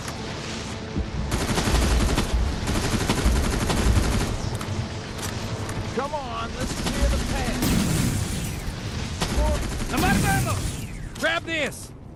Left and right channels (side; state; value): both; identical; correlation 1.00